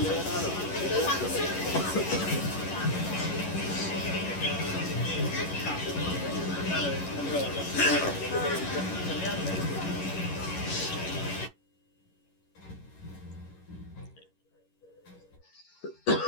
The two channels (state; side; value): late; right; 11 ms